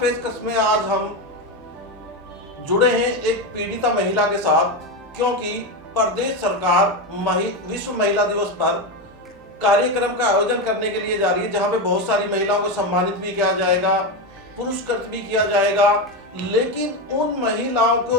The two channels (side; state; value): both; normal; correlation 0.14